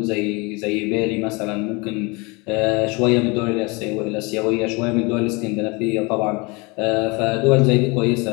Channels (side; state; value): right; quieter; 27.6 dB